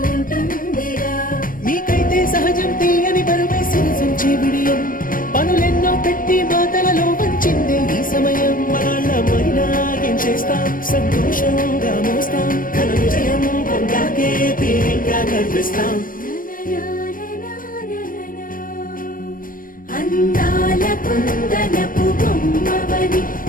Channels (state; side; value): late; right; 0.40 ms